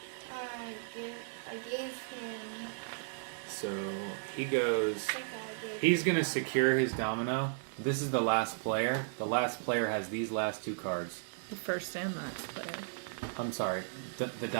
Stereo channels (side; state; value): left; silent; 54 dB below the other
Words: I gave him. So he goes. I think I gave He's going to secure his domino. This is the last player. The last player has these last 2 cards. The first and last player. I'm sorry, the